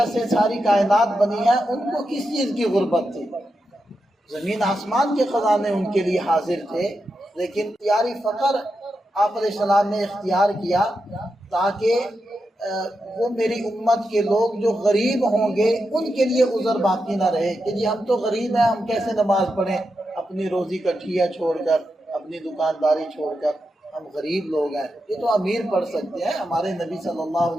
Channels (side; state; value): both; normal; correlation 0.87